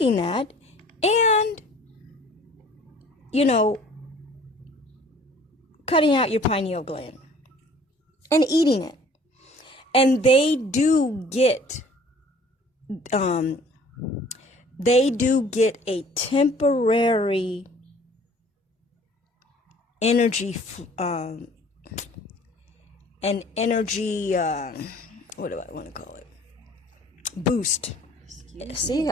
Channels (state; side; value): normal; both; correlation 0.52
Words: that and, cutting out your pineal gland and eating it. And they do get a temporary energy, what do I want to call it? Boost. See,